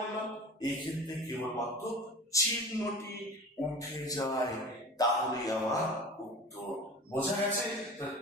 এই ক্ষেত্রে কেবলমাত্র চিহ্নটি উঠে যায়, তাহলে আমার উত্তর। বোঝা গেছে?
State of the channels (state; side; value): normal; both; correlation 0.37